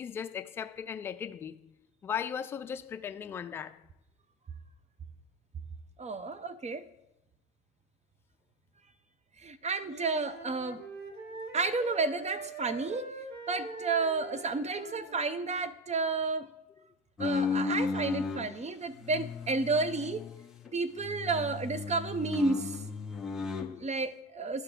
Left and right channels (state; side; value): normal; both; correlation 0.23